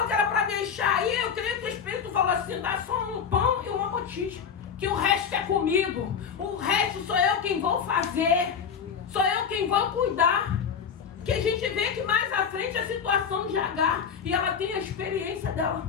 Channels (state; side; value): quieter; right; 6.9 dB